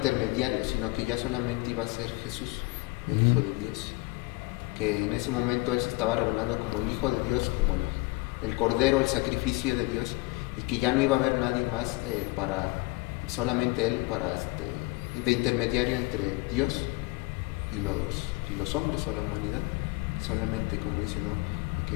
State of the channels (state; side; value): quieter; right; 23.5 dB